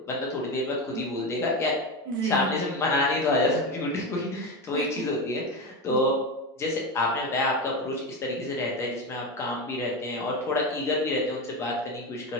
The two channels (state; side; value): normal; both; correlation 0.18